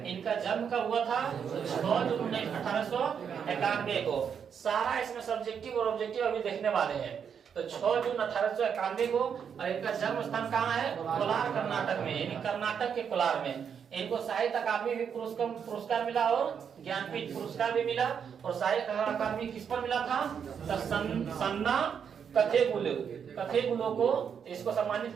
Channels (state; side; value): quieter; left; 7.4 dB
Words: इनका जन्म कब हुआ था, 6 जून 1891 को। सारा इसमें सब्जेक्टिव और ऑब्जेक्टिव अभी देखने वाले हैं। तो 6 जून 1891 को, और इनका जन्म स्थान कहाँ है, कोलार कर्नाटक में, यानी कर्नाटक के कोलार में। इनको साहित्य अकादमी भी पुरस्कार मिला और ज्ञानपीठ पुरस्कार भी मिला। और साहित्य अकादमी किस पर मिला था, सन्ना कथेगुलो को इसको सम्मानित